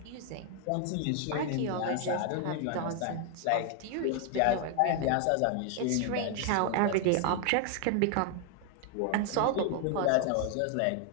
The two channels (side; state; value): both; different; correlation 0.00